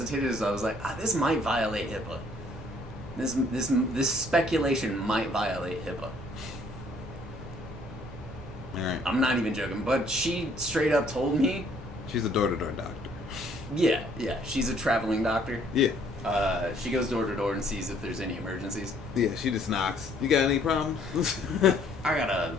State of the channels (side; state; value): both; normal; correlation 0.62